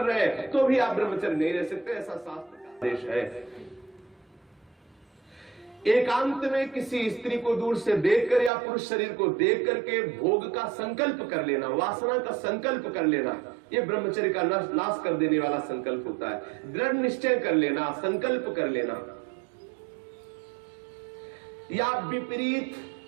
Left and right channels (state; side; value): drops out; left; at 8.5 s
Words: रहे हैं, तो भी आप ब्रह्मचर्य नहीं रह सकते, ऐसा शास्त्र का आदेश है। एकांत में किसी स्त्री को दूर से देखकर या पुरुष शरीर को देख करके भोग का संकल्प कर लेना, वासना का संकल्प कर लेना, ये ब्रह्मचर्य का नाश कर देने वाला संकल्प होता है। दृढ़ निश्चय कर लेना, संकल्प कर लेना। या विपरीत